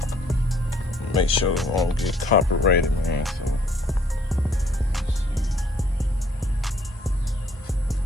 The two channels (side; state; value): both; normal; correlation 0.63